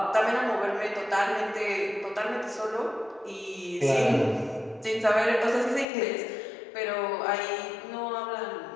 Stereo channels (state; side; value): drops out; right; at 5.9 s